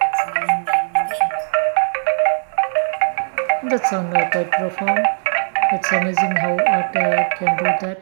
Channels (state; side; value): silent; left; digital silence